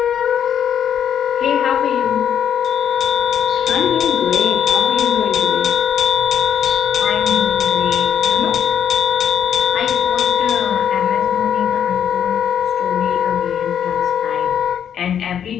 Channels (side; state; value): right; quieter; 8.9 dB